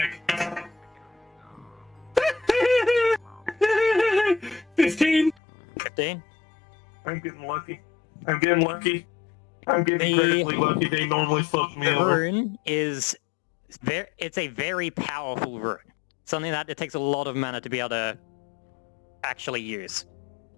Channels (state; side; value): drops out; right; at 5.4 s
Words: 15. 15? I'm getting lucky. I'm getting lucky. I'm getting incredibly lucky. They normally fuck me The over. rune is it's a very powerful rune. Something that it takes a lot of mana to be able to actually use.